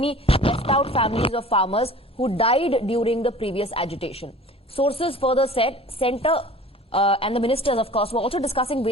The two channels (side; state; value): both; normal; correlation 0.44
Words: left out families of farmers who died during the previous agitation. Sources further said centre and the ministers, of course, were also discussing